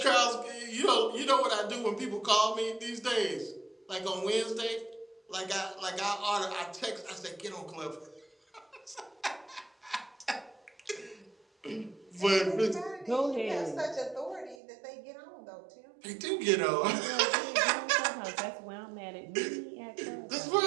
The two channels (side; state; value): left; drops out; at 14.6 s